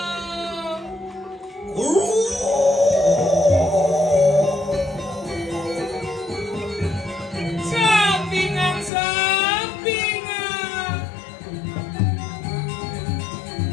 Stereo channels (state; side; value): drops out; right; at 8.9 s